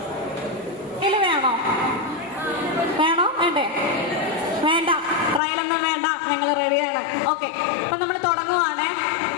വേണോ? വേണ്ടേ? വേണ്ട. ട്രയലൊന്നും വേണ്ട. ഞങ്ങൾ റെഡിയാണ്. ഓക്കെ. അപ്പൊ നമ്മൾ തുടങ്ങുവാണേ.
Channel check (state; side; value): drops out; right; at 5.4 s